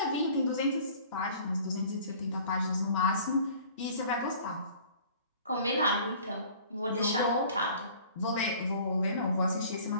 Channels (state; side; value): inverted; both; correlation -0.49